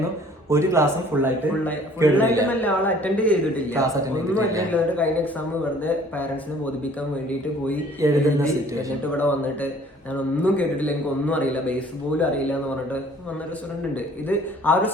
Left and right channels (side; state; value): both; normal; correlation 0.54